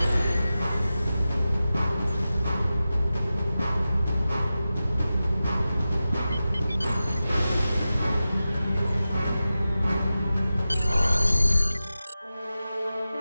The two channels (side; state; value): both; inverted; correlation -0.94